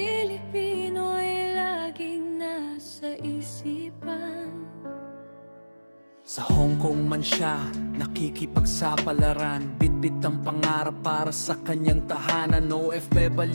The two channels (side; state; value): both; inverted; correlation -1.00